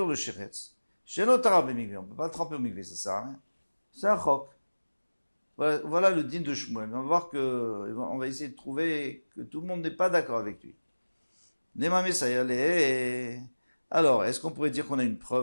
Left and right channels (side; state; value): both; inverted; correlation -1.00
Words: le sheretz. Shelo tara b'mikvé, on peut pas le tremper au mikvé, ça sert à rien. C'est un chok. Voilà le din de Shmuel. On va voir on va essayer de trouver que tout le monde n'est pas d'accord avec lui. Alors, est-ce qu'on pourrait dire qu'on a une